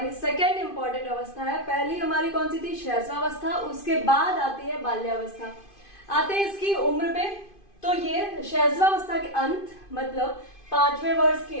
सेकेंड इंपॉर्टेंट अवस्था है। पहली हमारी कौन सी थी? शैशवावस्था। उसके बाद आती है बाल्यावस्था। आते हैं इसकी उम्र पे तो ये शैशवावस्था के अंत मतलब 5वें वर्ष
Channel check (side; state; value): right; late; 2.5 ms